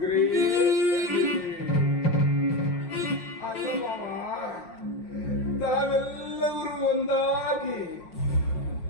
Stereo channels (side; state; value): right; late; 5.6 ms